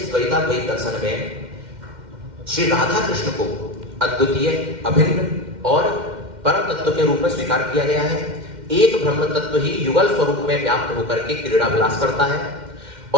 द्वैताद्वैत दर्शन में श्री राधा कृष्ण को अद्वितीय, अभिन्न और परम तत्व के रूप में स्वीकार किया गया है। एक ब्रह्म तत्व ही युगल स्वरूप में व्याप्त होकर के क्रीड़ा विलास करता है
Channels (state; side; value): late; left; 2.1 ms